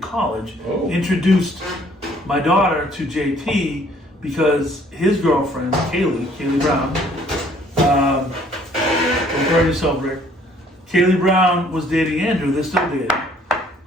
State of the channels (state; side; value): normal; both; correlation 0.60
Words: Oh. Introduced my daughter to JT because his girlfriend, Kaylee Brown, don't burn yourself, Rick. Kaylee Brown was dating Andrew. They're still dating.